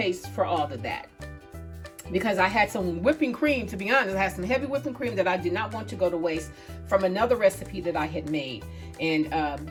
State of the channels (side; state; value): both; identical; correlation 1.00